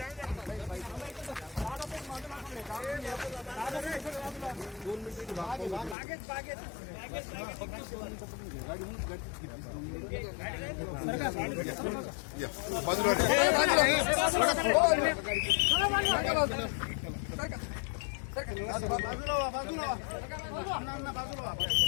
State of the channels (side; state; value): right; drops out; at 6.0 s